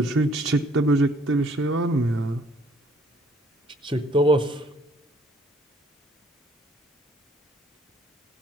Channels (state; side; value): normal; both; correlation 0.61